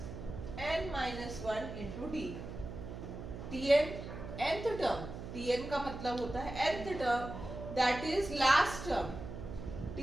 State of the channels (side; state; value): right; noise; hum, 9 dB below the sound